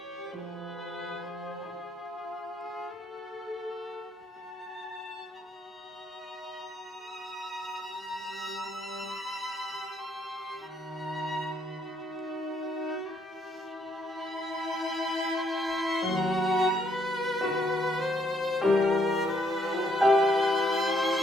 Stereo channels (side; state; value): both; normal; correlation 0.70